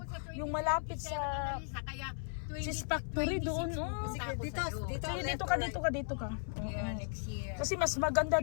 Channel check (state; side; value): silent; right; 54 dB below the other